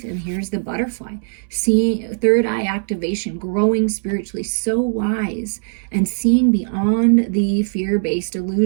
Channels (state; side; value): silent; left; 66 dB below the other